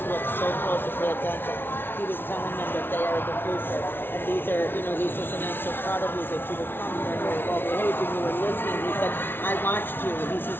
look so close and pay attention. He was telling them that they are the future, and these are, you know, he says, and I'm so proud of you that you were coming here and you were well behaved and you were listening. He said, I watched you. He says,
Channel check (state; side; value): late; right; 0.11 ms